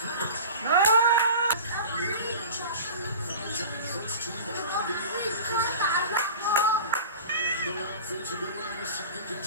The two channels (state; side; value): inverted; both; correlation -0.37